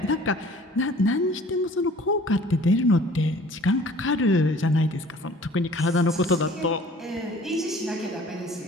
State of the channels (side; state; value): both; normal; correlation 0.50